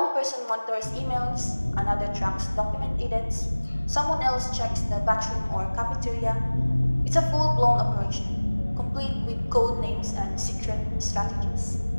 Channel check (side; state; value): both; inverted; correlation -1.00